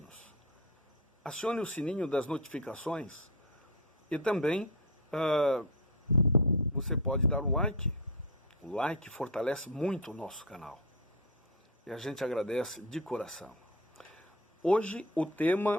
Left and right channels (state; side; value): normal; both; correlation 0.17